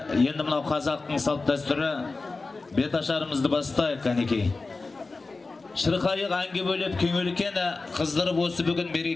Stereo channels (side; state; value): right; quieter; 3.7 dB